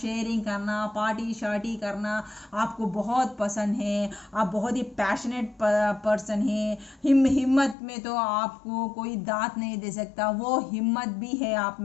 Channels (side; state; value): right; drops out; at 7.8 s